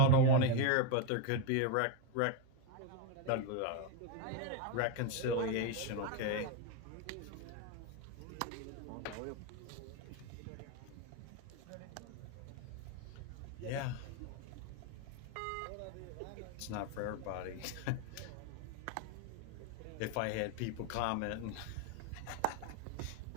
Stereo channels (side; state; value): both; different; correlation 0.02